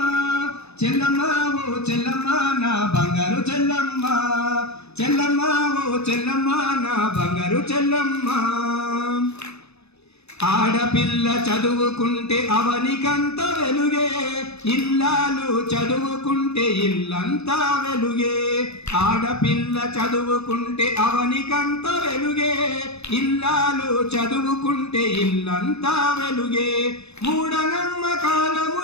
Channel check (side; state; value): right; late; 0.80 ms